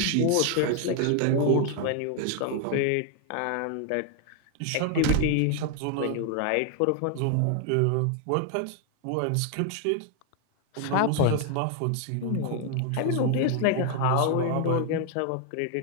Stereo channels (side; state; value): both; different; correlation 0.01